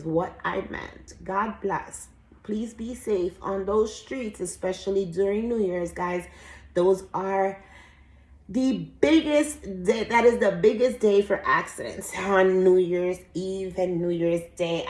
what I meant. God bless. Please be safe on those streets, especially during New Year's, guys. Those are the biggest day. That is the biggest day for accidents, on New Year's Eve and New Year's Day.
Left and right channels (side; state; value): both; identical; correlation 1.00